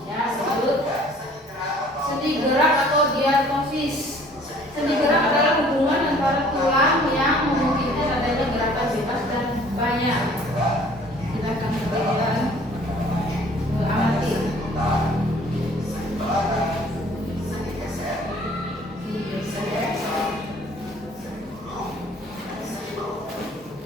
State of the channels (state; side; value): normal; both; correlation 0.54